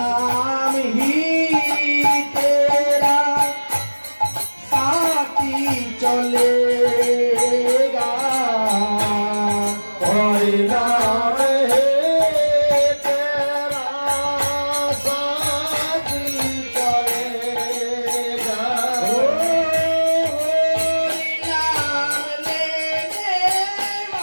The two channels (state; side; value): inverted; both; correlation -1.00